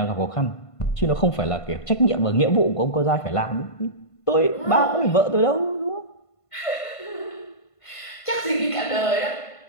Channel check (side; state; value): right; late; 1.5 ms